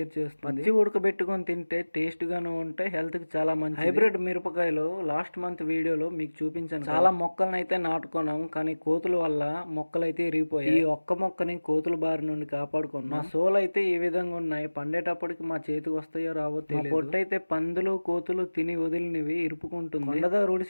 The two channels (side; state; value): both; inverted; correlation -1.00